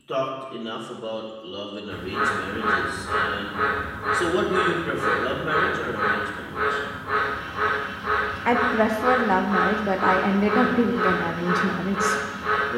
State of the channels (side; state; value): both; identical; correlation 1.00